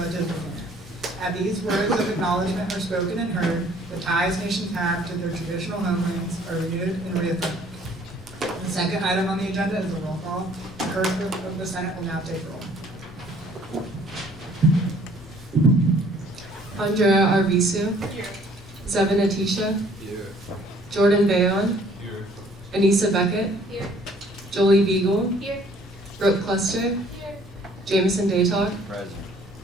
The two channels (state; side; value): normal; both; correlation 0.58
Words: within it. As these words of acknowledgement are spoken and heard, the ties nations have to their traditional homelands are renewed and reaffirmed. The second item on the agenda is a roll call. The clerk of the Senate will now take roll. Andrea Arvisu. Here. Zevin Atisha. Here. Jordan Bayon. Here. Anissa Beckett. Here. Jolie Beagle. Here. Brooke Cluster. Here. Jameson Daytalk. Present.